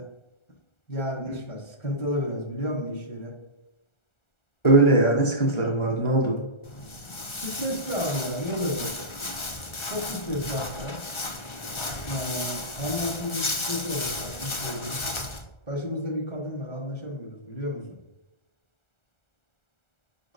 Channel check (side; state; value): right; late; 1.4 ms